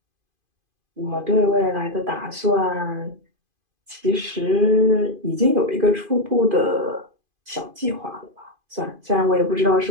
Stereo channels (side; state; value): left; late; 2.5 ms